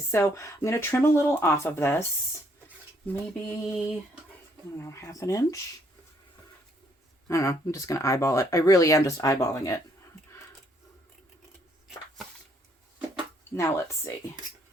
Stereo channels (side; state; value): both; normal; correlation 0.68